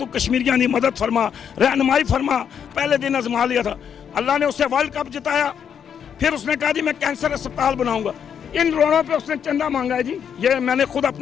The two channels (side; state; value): right; quieter; 8.0 dB